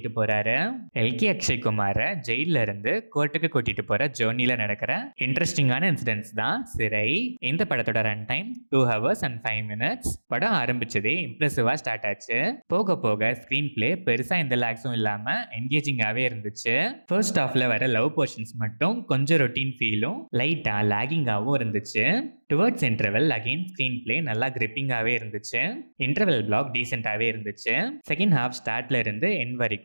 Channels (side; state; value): both; inverted; correlation -1.00